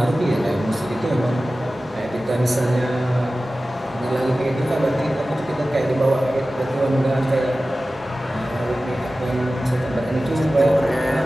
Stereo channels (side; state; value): both; normal; correlation 0.96